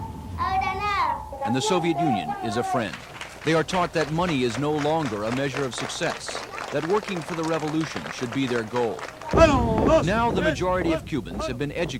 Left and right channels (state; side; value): identical; both; correlation 1.00